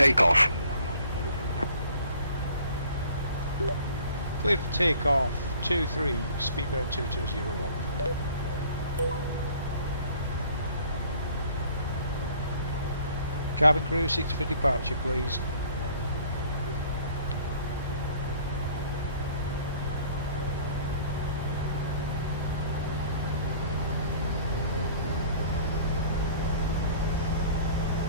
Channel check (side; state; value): both; inverted; correlation -0.52